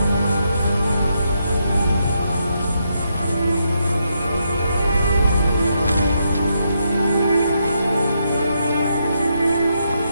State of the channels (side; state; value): both; inverted; correlation -0.80